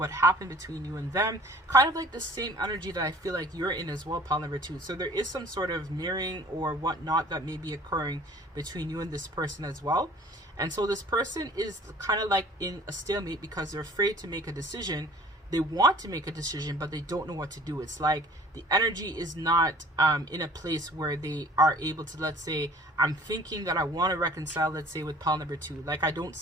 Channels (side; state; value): both; normal; correlation 0.51